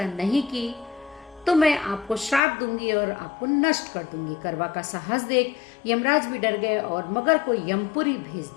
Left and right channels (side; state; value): right; drops out; at 2.4 s